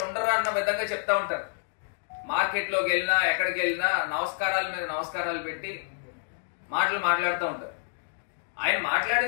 ఉండరు అన్న విధంగా చెప్తా ఉంటారు. మార్కెట్లోకి వెళ్ళినా ఎక్కడికి వెళ్ళినా నమస్కారాల మీద నమస్కారాలు పెట్టి మాటలు మాట్లాడుతూ ఉంటారు. ఆయన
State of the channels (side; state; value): right; silent; digital silence